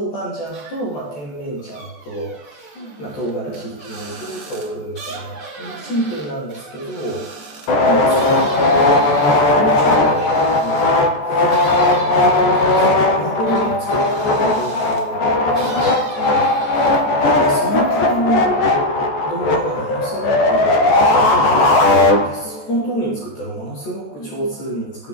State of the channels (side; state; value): right; late; 14 ms